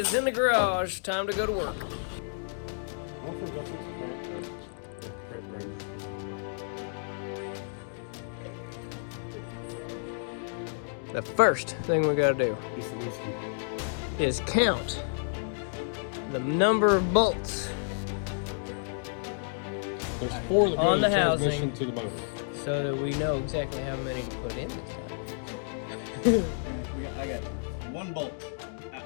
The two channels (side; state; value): right; silent; digital silence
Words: in the garage. Time to go to work. The first thing we gotta do is count the number of bolts There's 4 that go on in the transmission housing to the motor. so that we know exactly how many to put in this time. I got 1 bolt.